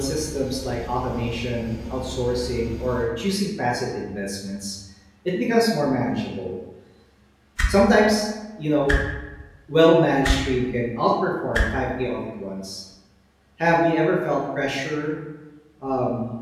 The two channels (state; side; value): identical; both; correlation 1.00